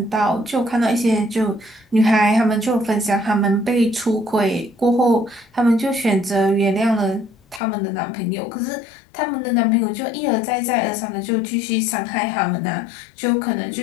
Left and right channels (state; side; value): drops out; right; at 7.6 s